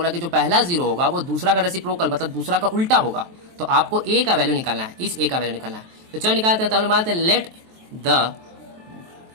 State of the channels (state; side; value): late; left; 23 ms